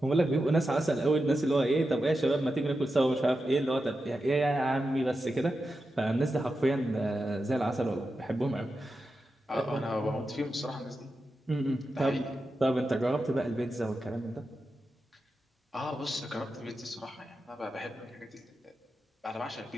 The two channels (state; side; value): normal; both; correlation 0.90